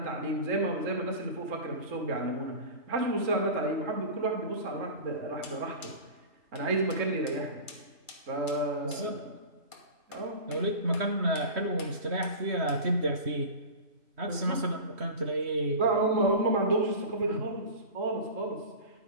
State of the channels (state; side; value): late; left; 3.1 ms